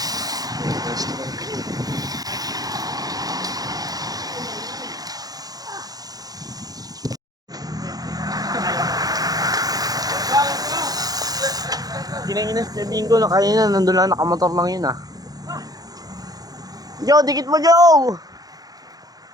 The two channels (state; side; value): late; left; 0.18 ms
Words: Ginanginas na bingo na kanina, nandun lang nakamotor lang yun ah. Joe, dikit mo Joe!